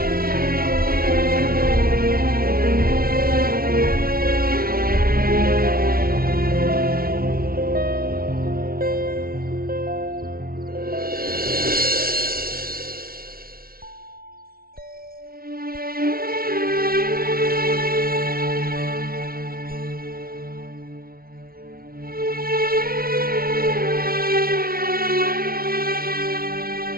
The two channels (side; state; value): left; late; 0.43 ms